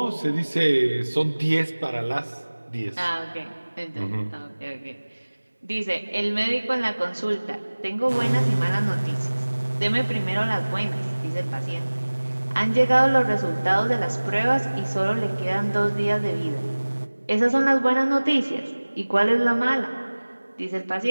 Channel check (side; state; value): both; inverted; correlation -1.00